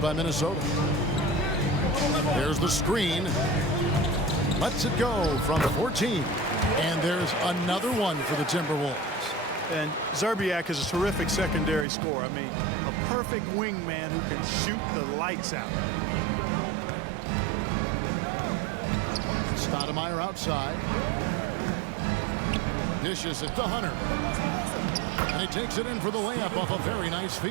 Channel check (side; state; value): left; drops out; at 11.9 s